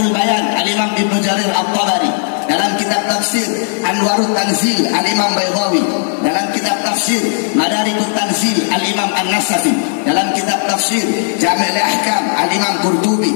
Bayan Al-Imam Ibnu Jarir At-Tabari, dalam kitab tafsir Anwarut Tanzil Al-Imam Baydawi, dalam kitab tafsir Madarikut Tanzil Al-Imam An-Nasafi, dalam kitab tafsir Jami' Al-Ahkam Al-Imam Qurtubi,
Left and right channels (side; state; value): right; silent; 62 dB below the other